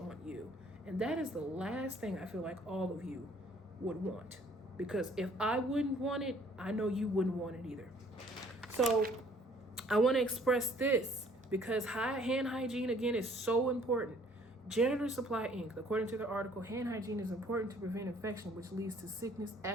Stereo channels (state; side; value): normal; both; correlation 0.59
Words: on you. And that is the last thing I feel like all of you would want. Because if I wouldn't want it, I know you wouldn't want it either. So I want to express this because hand hygiene, again, is so important. Janitor Supply Inc., according to the article, hand hygiene is important to prevent infection, which leads to sickness,